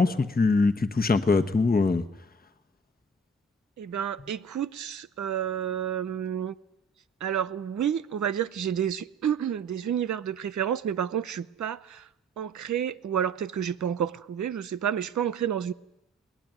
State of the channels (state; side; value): normal; both; correlation 0.50